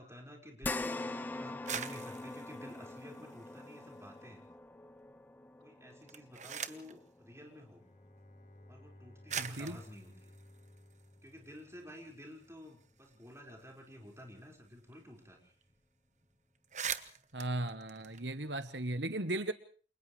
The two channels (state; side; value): normal; both; correlation 0.42